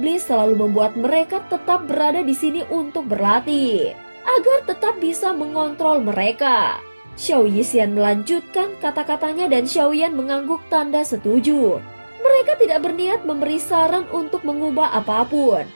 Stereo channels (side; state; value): both; inverted; correlation -1.00